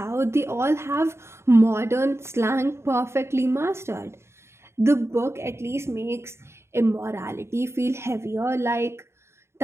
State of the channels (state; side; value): late; left; 0.13 ms